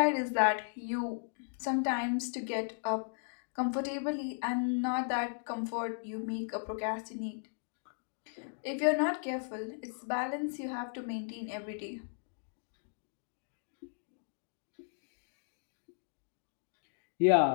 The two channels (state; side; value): silent; right; digital silence